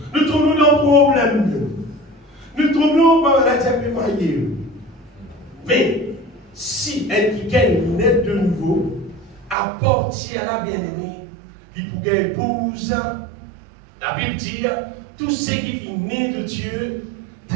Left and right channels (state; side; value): drops out; left; at 9.6 s